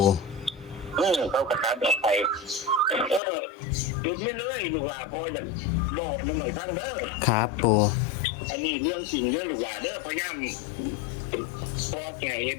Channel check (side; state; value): right; drops out; at 3.2 s